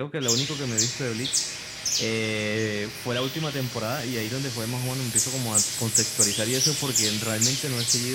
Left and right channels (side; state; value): both; identical; correlation 1.00